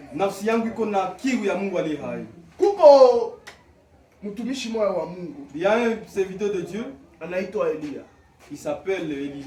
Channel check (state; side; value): identical; both; correlation 1.00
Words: Nafsi yangu iko na kiu ya Mungu aliye hai. Kuko mtumishi mmoja wa Mungu. Il y a un serviteur de Dieu, anaitwa Elia. Il s'appelle